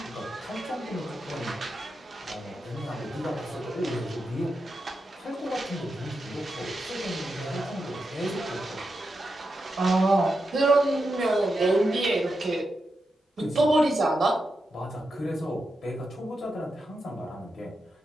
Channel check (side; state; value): both; normal; correlation 0.87